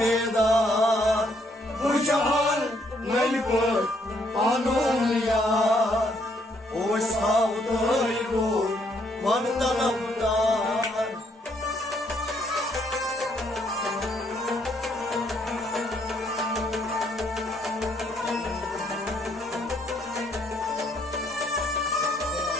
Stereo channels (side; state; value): both; normal; correlation 0.70